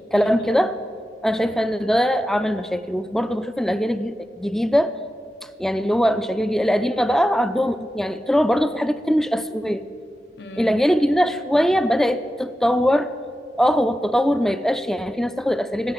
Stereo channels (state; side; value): normal; both; correlation 0.92